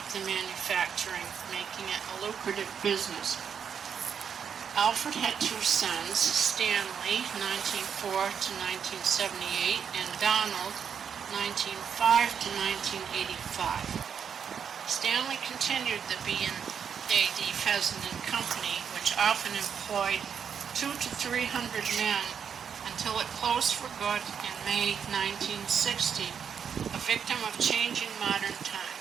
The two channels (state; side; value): quieter; left; 7.4 dB